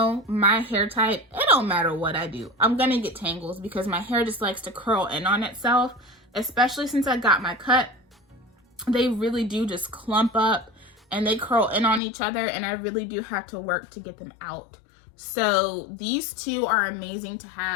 my hair type, it don't matter what I do, I'm gonna get tangles because my hair just likes to curl in on itself, especially since I got my cut. They really do just clump up and they curl in on each other, and I really do have to work to get them out. So these two are amazing to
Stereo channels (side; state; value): right; drops out; at 12.0 s